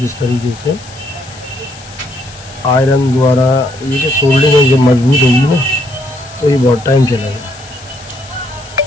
तरीके से आयरन द्वारा ये जो सोल्डिंग है जब मजबूत होगी ना, तो ये बहुत टाइम चलेगा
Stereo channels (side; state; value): left; noise; hiss, 19 dB below the sound